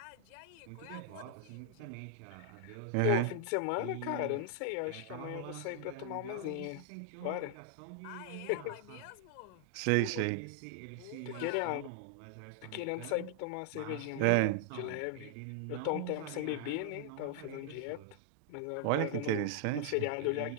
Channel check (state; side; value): different; both; correlation 0.00